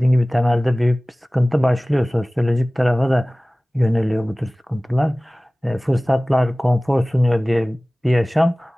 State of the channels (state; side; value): normal; both; correlation 0.98